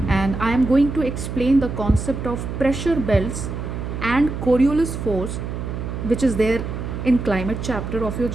and I am going to explain the concept of pressure belts and Coriolis force, which is there in climate chapter of your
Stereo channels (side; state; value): right; noise; hum, 5 dB below the sound